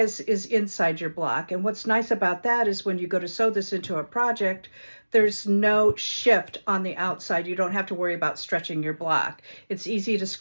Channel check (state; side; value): inverted; both; correlation -1.00